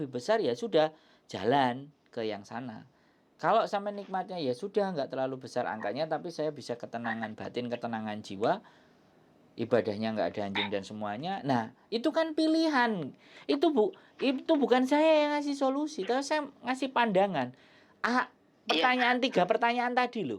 besar ya sudah, jalan ke yang sana. Kalau sampai nikmatnya ya sudah nggak terlalu besar angkanya, tapi saya bisa ketenangan batin, ketenangan jiwa, ibadahnya nggak ada anjing dan semuanya. Nah itu kan pilihan. Itu bukan saya yang ngasih solusi, tapi saya ngasih pandangan. Tiga pertanyaan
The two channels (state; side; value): identical; both; correlation 1.00